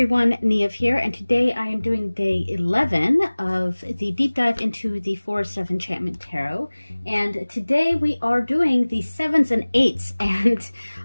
Neve here, and today I am doing day 11 of the deep dive into the Forest of Enchantment Tarot. And today we are doing the 7s and 8s, and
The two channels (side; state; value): both; inverted; correlation -1.00